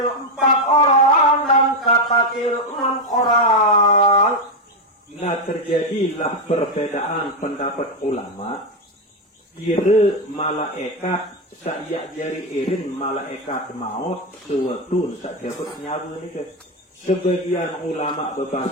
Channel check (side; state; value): both; normal; correlation 0.07